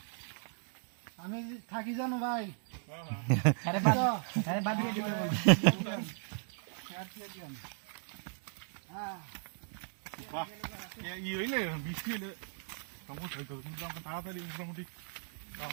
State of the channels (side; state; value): left; silent; 53 dB below the other